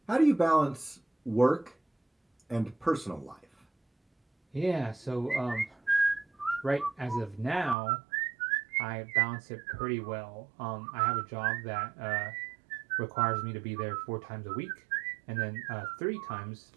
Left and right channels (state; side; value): drops out; left; at 7.8 s